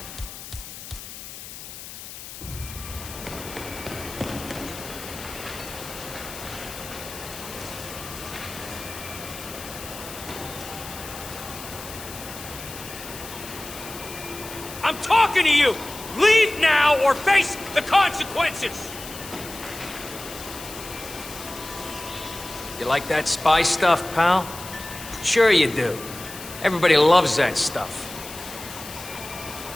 I'm talking to you! Leave now or face the consequences! You like that spy stuff, pal? Sure you do. Everybody loves that stuff.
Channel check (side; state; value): left; noise; hiss, 12 dB below the sound